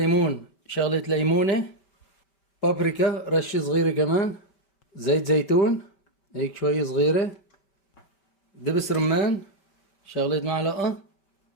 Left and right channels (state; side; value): late; right; 5.2 ms